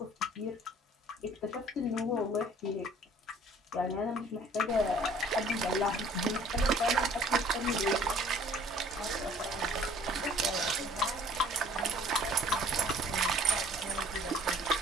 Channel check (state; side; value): normal; both; correlation 0.54